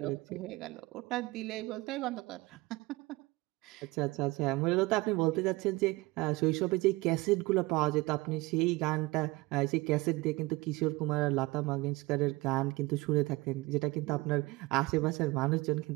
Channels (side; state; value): left; quieter; 21.9 dB